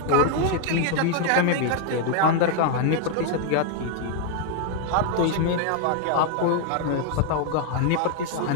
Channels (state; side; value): different; both; correlation 0.00